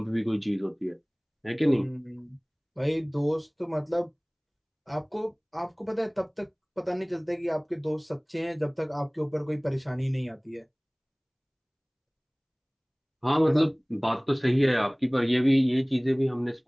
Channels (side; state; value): both; identical; correlation 1.00